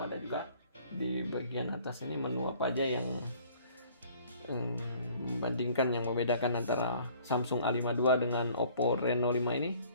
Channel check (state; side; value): inverted; both; correlation -0.54